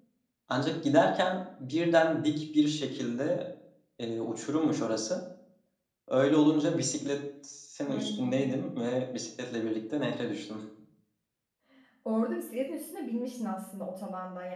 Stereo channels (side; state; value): both; identical; correlation 1.00